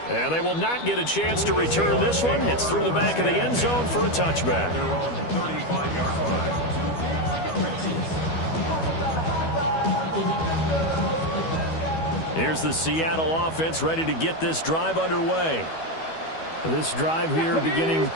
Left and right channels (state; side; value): late; right; 12 ms